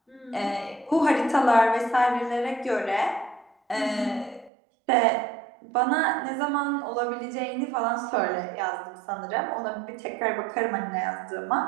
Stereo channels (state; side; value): drops out; left; at 4.5 s